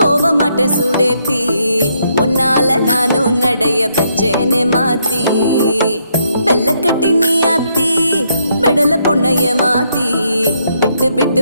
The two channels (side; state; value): both; inverted; correlation -0.75